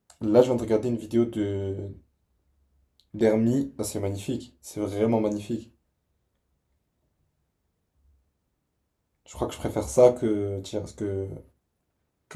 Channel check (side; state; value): both; identical; correlation 1.00